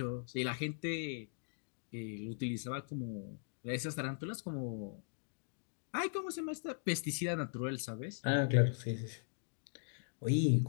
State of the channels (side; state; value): right; silent; digital silence